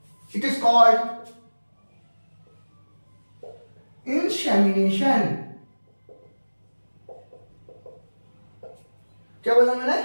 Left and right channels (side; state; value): both; inverted; correlation -1.00